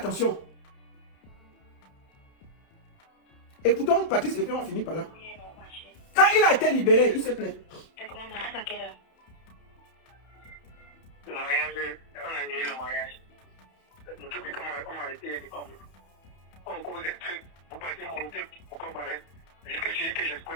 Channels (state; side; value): late; right; 31 ms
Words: Écoutons Patrice et puis on va finir par là. Oui, non, ma chérie. Quand il a été libéré, il se plaît. T'as comment mariage à quelle heure? Le mariage, on a annulé le mariage. Nous tous comme on a arrêté les femmes. On cause des trucs pour passer mon temps pour qu'on m'arrête. Jusqu'à ce que